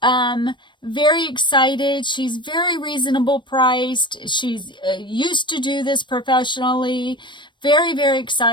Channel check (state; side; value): late; right; 0.22 ms